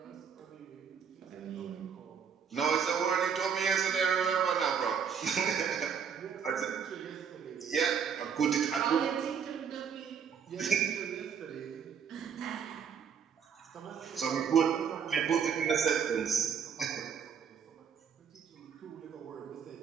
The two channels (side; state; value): left; quieter; 7.1 dB